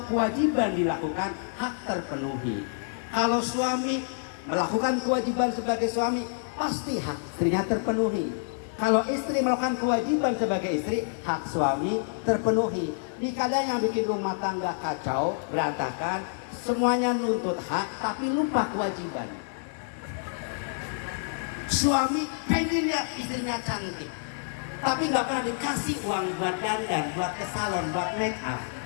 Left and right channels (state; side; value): silent; right; digital silence